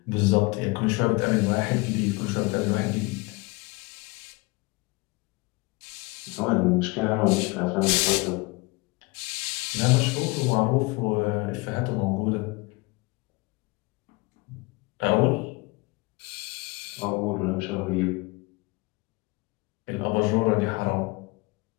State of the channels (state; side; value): quieter; right; 25.7 dB